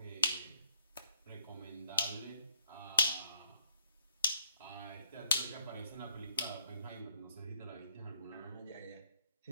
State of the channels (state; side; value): inverted; both; correlation -0.69